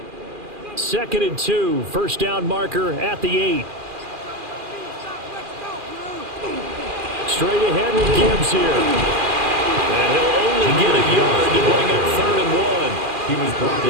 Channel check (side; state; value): left; late; 2.4 ms